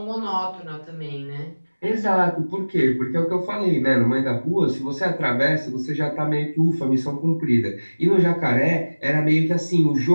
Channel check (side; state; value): both; inverted; correlation -1.00